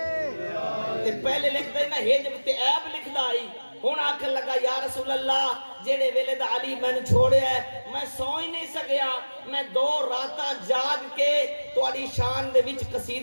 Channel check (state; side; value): inverted; both; correlation -1.00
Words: پہلے لکھ دینا ہے جب تے عیب لکھ دائی، ہون آکھن لگا یا رسول اللہ جیڑے ویلے دا علی میں نے چھوڑے ہے میں سو ہی نہیں سکیا، میں 2 راتاں جاگ کے تواڈی شان دے وچ